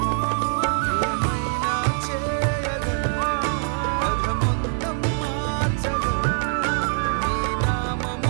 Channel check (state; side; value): silent; left; 63 dB below the other